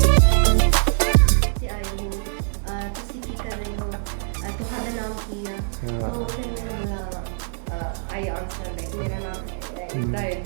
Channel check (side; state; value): left; silent; digital silence